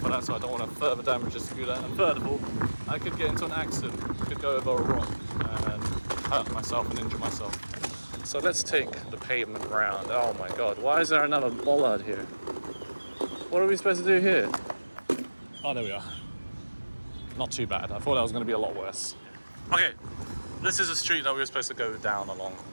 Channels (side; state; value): both; inverted; correlation -1.00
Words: that, so I don't want to further damage the scooter, and third of all I could get into an accident, could go over a rock and hurt myself and injure myself. So let's take the pavement round. Oh my god, why is there another bollard here? What are we supposed to do here? Oh, there we are. Not too bad. I thought that was going to be a lot worse. Okay, this is a street that we were supposed to go down along